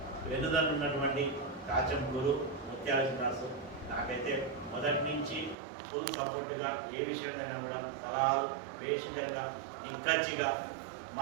వెన్నుదన్నున్నటువంటి కాచం గురు ముత్యాల శ్రీనివాసు నాకైతే మొదటి నుంచి ఫుల్ సపోర్ట్గా ఏ విషయమైనా కూడా సలహాలు వేషంగా నిక్కచ్చిగా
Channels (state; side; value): drops out; left; at 5.6 s